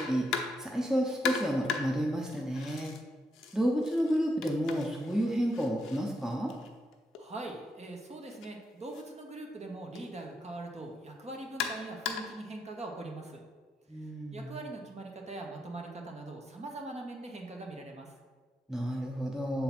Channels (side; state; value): both; normal; correlation 0.81